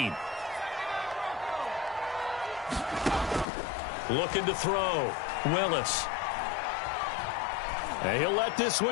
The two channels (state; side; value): drops out; right; at 3.5 s